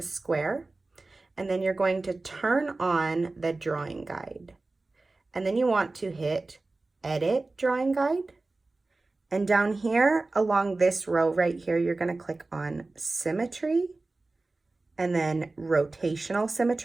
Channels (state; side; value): quieter; left; 3.3 dB